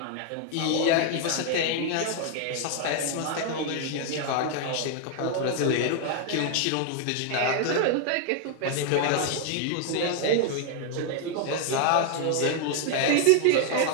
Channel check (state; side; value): different; both; correlation 0.00